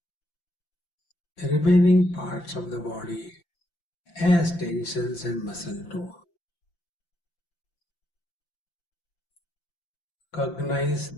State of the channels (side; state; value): right; late; 5.8 ms